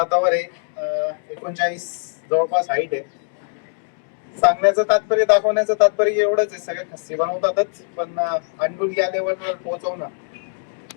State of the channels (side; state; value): right; silent; digital silence